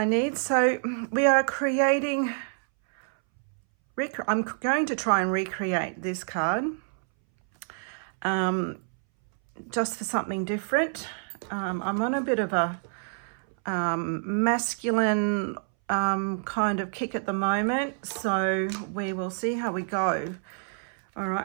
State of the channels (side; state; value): left; silent; 60 dB below the other